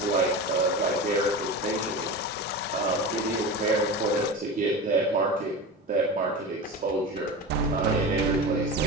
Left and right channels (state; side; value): normal; both; correlation 0.27